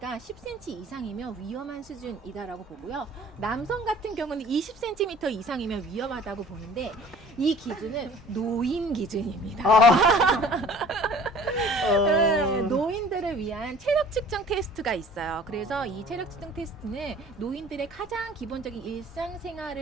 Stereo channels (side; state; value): both; normal; correlation 0.48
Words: 10cm 이상이면 위험한 수준이다라고 보고요. 남성 같은 경우는 20cm 이상이면 위험하다고 보는데 이 기준은 노인 기준입니다. 네, 노인들을 위한 체력 측정 테스트가 있어요. 그래서 이 체력 측정 테스트는 노인들의 가장 기본적인